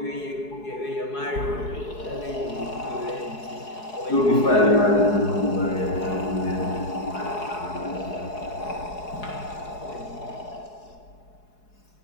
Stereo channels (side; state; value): right; late; 4.7 ms